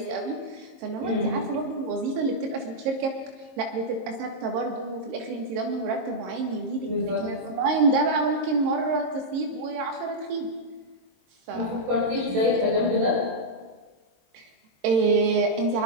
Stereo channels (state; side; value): late; left; 22 ms